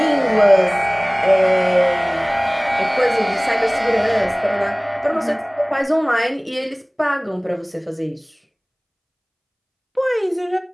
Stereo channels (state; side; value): identical; both; correlation 1.00